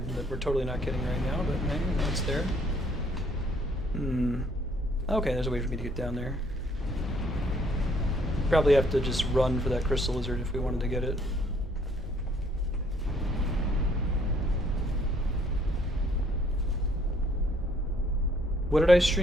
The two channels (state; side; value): normal; both; correlation 0.64